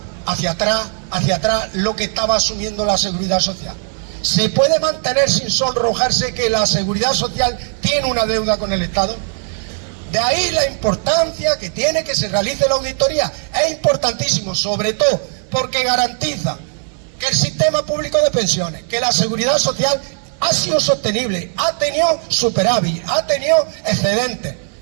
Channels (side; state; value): left; silent; 55 dB below the other